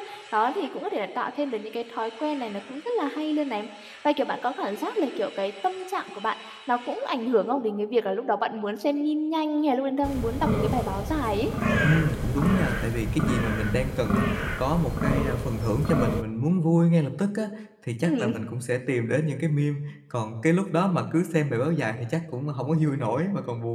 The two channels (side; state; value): both; identical; correlation 1.00